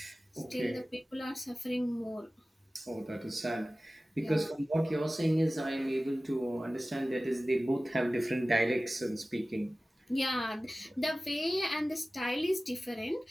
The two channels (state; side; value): normal; both; correlation 0.97